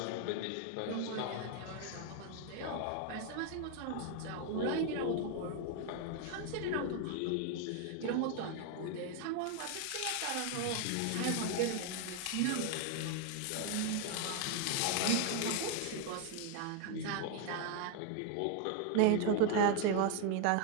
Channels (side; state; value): both; different; correlation 0.01